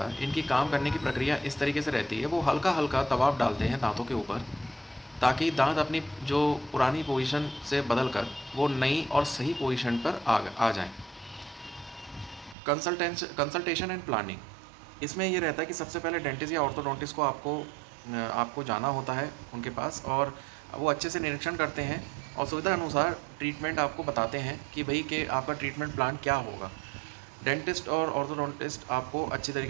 इनकी काम करने की प्रक्रिया इस तरीके से रहती है। वो हल्का हल्का दबाव डालते हैं दांतों के ऊपर, ताकि दांत अपनी जो पुरानी पोजीशन से बदल कर वो नई और सही पोजीशन पर आ जाएं। कंसल्टेशन एंड प्लानिंग, इसमें ये रहता है कि सबसे पहले डेंटिस्ट या ऑर्थोडोंटिस्ट को आपको जाना होता है उनके पास, और वो अच्छे से निरीक्षण करते हैं और सुविधा अनुसार ट्रीटमेंट आपको बताते हैं कि भाई कि आपका ट्रीटमेंट प्लान क्या होगा। डेंटिस्ट और ऑर्थोडोंटिस्ट आपको अच्छी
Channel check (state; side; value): drops out; left; at 12.6 s